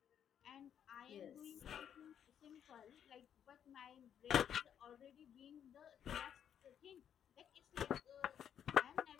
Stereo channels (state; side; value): quieter; right; 9.0 dB